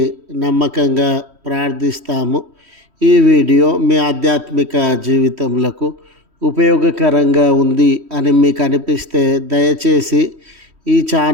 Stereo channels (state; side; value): late; left; 3.1 ms